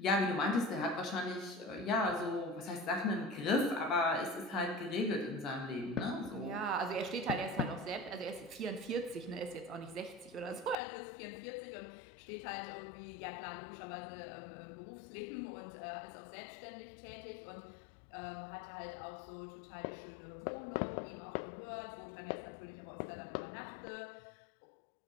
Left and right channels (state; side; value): drops out; right; at 10.8 s